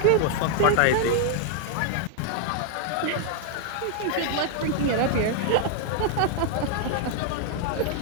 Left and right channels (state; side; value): different; both; correlation 0.00